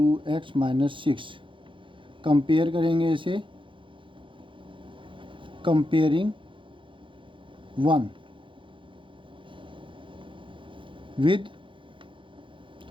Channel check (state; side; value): late; left; 0.25 ms